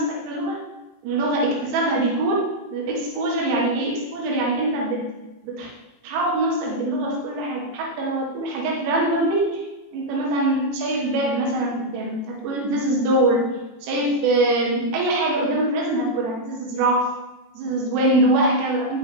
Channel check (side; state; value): left; late; 18 ms